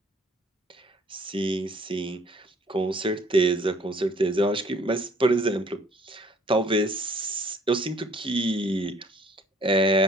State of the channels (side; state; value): both; normal; correlation 0.58